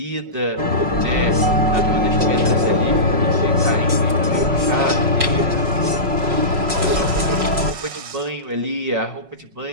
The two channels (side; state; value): left; late; 5.4 ms